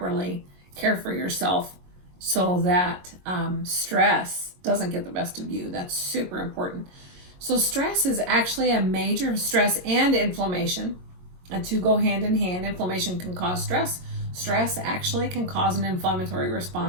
care for yourself so that stress doesn't get the best of you. That's super important. So stress is actually a major stress and inflammation. And two go hand in hand. Inflammation can cause stress. Stress actually can cause an inflammatory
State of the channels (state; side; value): late; left; 22 ms